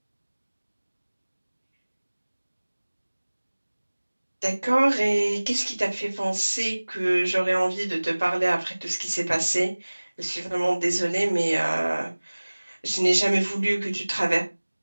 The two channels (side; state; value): both; inverted; correlation -1.00